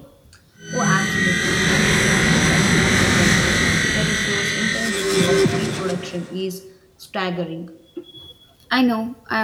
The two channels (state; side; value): identical; both; correlation 1.00